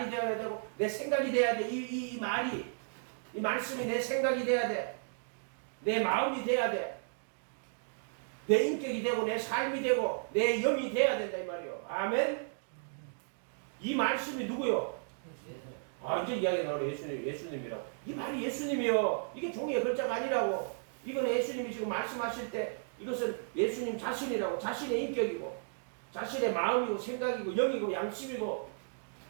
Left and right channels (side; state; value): left; silent; digital silence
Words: 되어야 되고 내 생각이 돼야 돼. 이 말이 이 말씀이 내 생각이 돼야 돼. 내 마음이 돼야 돼. 내 인격이 되고 내 삶이 되고 내 영이 돼야 된다 이 말이요. 아멘. 이 말씀이 누구요? 이제 이야기 나오네. 예수님이라고. 이 말이 예수님이요. 이게 종이의 글자가 아니라고. 이건 예수님이 지금 말씀하실 때 이것은 예수님 자신이라고. 자신의 인격이고 자신의 마음이고 생각이고 영이고 양심이고